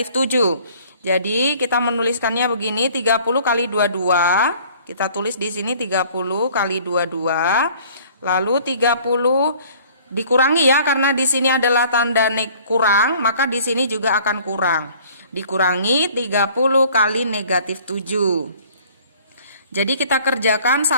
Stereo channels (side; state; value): both; inverted; correlation -0.53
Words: 7. Jadi kita menuliskannya begini, 30 kali 22. Kita tulis di sini 30 kali 22. Lalu 30 dikurangi ya, karena di sini adalah tanda kurang, maka di sini juga akan kurang. Dikurangi 30 kali negatif 7. Jadi kita kerjakan